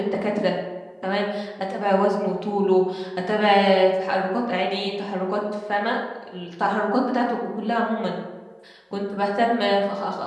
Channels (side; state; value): both; identical; correlation 1.00